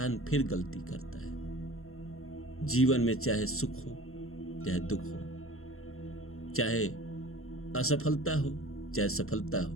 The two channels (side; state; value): right; late; 0.62 ms